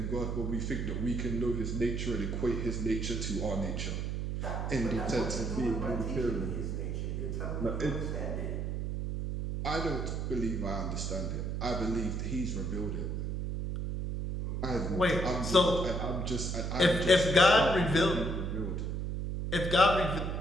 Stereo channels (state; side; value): noise; right; hum, 2 dB below the sound